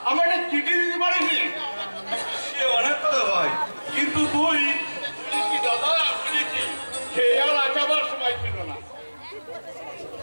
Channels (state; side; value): inverted; both; correlation -1.00